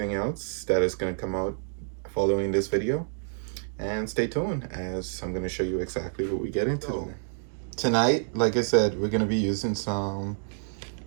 else that is going to come out following this video. And stay tuned as I'm going to show you exactly what we get into. So, tonight, like I said, we're going to be using some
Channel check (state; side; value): silent; left; digital silence